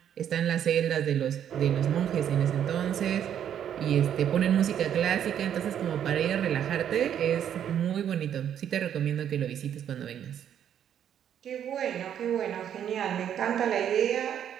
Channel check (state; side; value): quieter; left; 9.5 dB